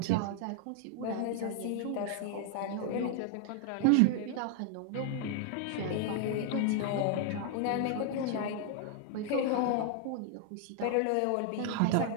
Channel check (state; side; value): different; both; correlation 0.00